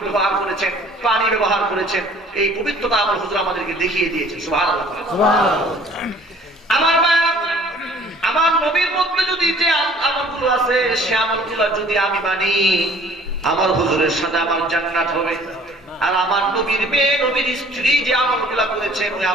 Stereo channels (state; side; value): normal; both; correlation 0.53